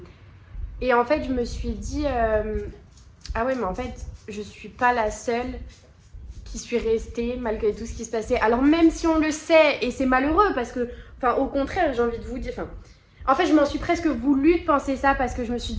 en fait je me suis dit ah ouais mais en fait je suis pas la seule qui suis restée malgré tout ce qui se passait. Alors même si on le sait et c'est malheureux parce que enfin, au contraire, j'ai envie de vous dire. Enfin, en fait, je m'en suis presque voulu de penser ça parce que je me suis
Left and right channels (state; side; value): identical; both; correlation 1.00